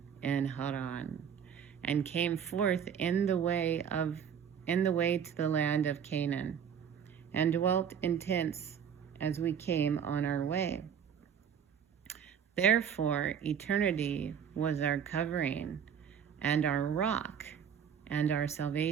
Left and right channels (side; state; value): left; quieter; 7.9 dB